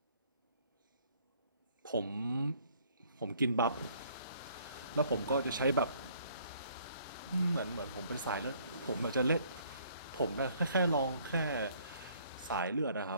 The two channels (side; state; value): both; inverted; correlation -0.61